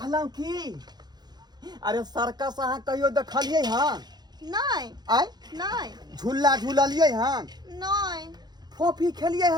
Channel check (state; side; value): late; left; 0.20 ms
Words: कि अरे सर्कस अहाँ कहियो देखलियै हन नहीं आय नहीं झूला झूललियै हन नहीं फोफी खेलियै